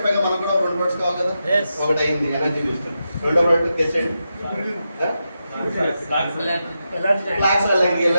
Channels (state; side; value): inverted; both; correlation -0.88